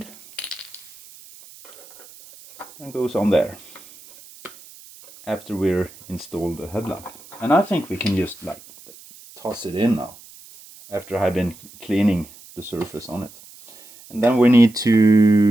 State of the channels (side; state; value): right; noise; hiss, 21 dB below the sound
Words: and goes on there after we're installed the headlamp. And I think we can just like toss it in now, after I've been cleaning the surface on it. And then we need